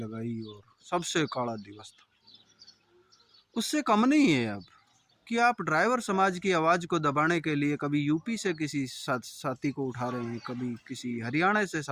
और सबसे काला दिवस था। उससे कम नहीं है अब कि आप ड्राइवर समाज की आवाज़ को दबाने के लिए कभी यूपी से किसी साथी को उठा रहे हैं, कभी किसी हरियाणा से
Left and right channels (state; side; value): identical; both; correlation 1.00